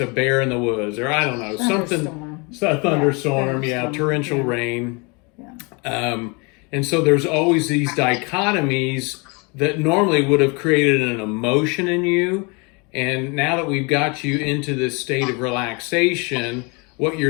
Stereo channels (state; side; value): quieter; right; 30.4 dB